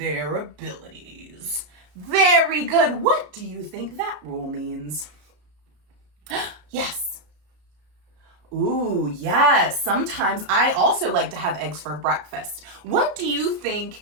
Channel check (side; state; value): left; late; 33 ms